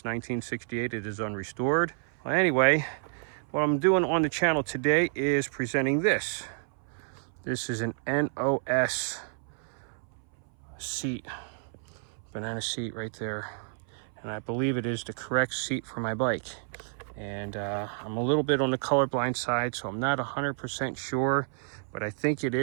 1968. It is unrestored. Well, anyway, what I'm doing on the channel today is presenting this. This is an NOS seat, banana seat right there. And I believe it is the correct seat for my bike. And I'm a little bit on the colorblind side, so I'm not 100% sure, but I think it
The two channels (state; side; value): silent; left; 58 dB below the other